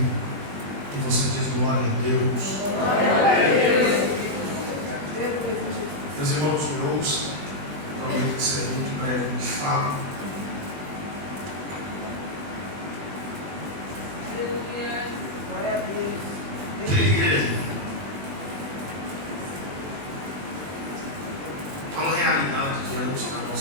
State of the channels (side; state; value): left; late; 20 ms